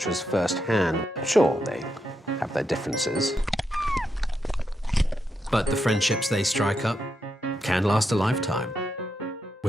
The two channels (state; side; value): normal; both; correlation 0.83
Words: firsthand. Sure, they have their differences, but the friendships they strike up can last a lifetime,